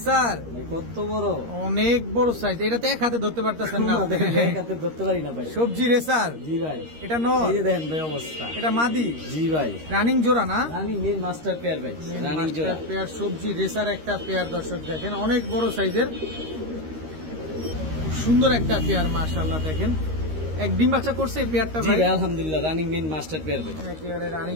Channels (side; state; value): left; late; 13 ms